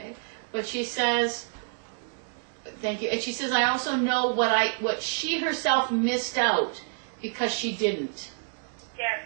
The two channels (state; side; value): silent; left; digital silence